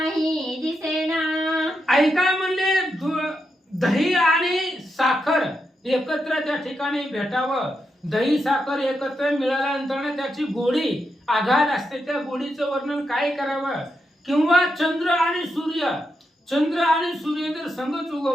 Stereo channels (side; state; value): both; normal; correlation 0.85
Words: दिसेना. ऐका म्हणले दही आणि साखर एकत्र त्या ठिकाणी भेटावं. दही साखर एकत्र मिळाल्यानंतर त्याची गोडी आघात असते, त्या गोडीचं वर्णन काय करावं. किंवा चंद्र आणि सूर्य जर संगच